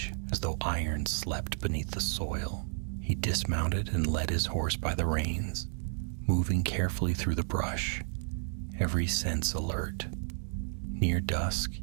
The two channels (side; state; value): left; silent; 56 dB below the other